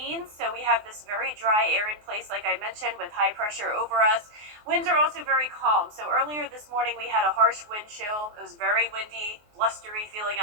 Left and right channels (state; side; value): late; left; 24 ms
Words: so we have this very dry air in place, like I mentioned, with high pressure over us. Winds are also very calm. So earlier this morning, we had a harsh wind chill. It was very windy, blustery feeling